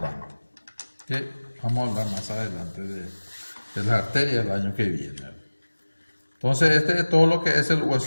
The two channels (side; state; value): both; inverted; correlation -1.00